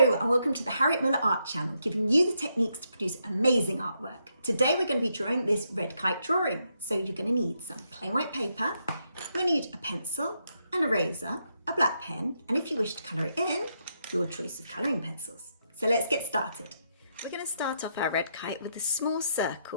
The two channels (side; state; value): both; inverted; correlation -0.79